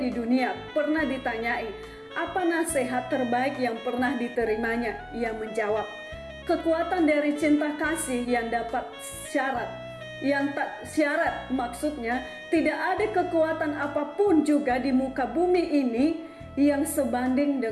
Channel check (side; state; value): both; identical; correlation 1.00